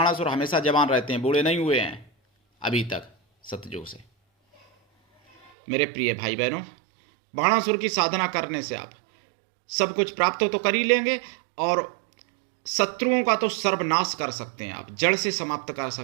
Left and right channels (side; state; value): left; drops out; at 5.5 s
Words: हमेशा जवान रहते हैं, बूढ़े नहीं हुए हैं अभी तक सतयुग से। मेरे प्रिय भाई बहनों, बाणासुर की साधना करने से आप सब कुछ प्राप्त तो कर ही लेंगे, और शत्रुओं का तो सर्वनाश कर सकते हैं आप, जड़ से समाप्त कर